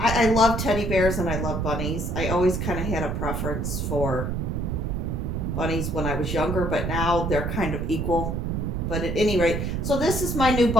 love teddy bears and I love bunnies. I always kind of had a preference for bunnies when I was younger, but now they're kind of equal. But at any rate, so this is my new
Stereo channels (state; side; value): noise; right; rumble, 1 dB below the sound